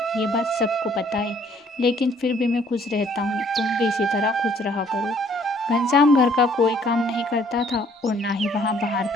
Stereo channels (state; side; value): normal; both; correlation 0.61